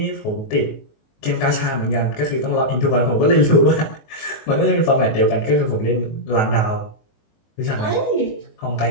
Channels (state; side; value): late; right; 19 ms